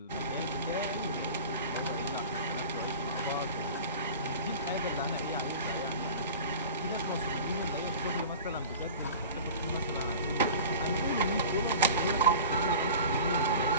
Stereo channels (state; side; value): inverted; both; correlation -0.38